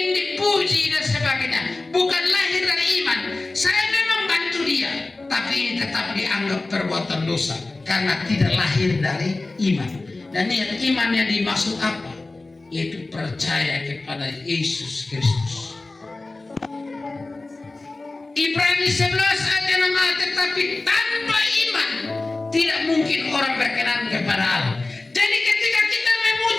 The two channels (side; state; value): right; quieter; 3.2 dB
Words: dipuji dan sebagainya. Bukan lahir dari iman. Saya memang bantu dia, tapi ini tetap dianggap perbuatan dosa karena tidak lahir dari iman. Dan niat iman yang dimaksud apa? Yaitu percaya kepada Yesus Kristus. Ibrani 11 ayat 6, tetapi tanpa iman tidak mungkin orang berkenan kepada Allah. Jadi ketika kita